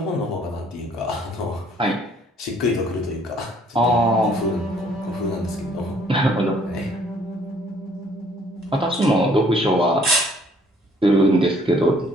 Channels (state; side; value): normal; both; correlation 0.61